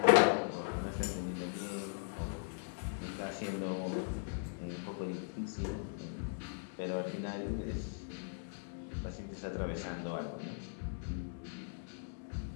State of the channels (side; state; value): right; silent; digital silence